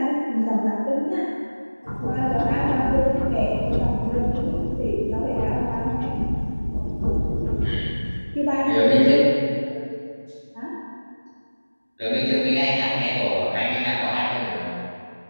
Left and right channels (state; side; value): inverted; both; correlation -1.00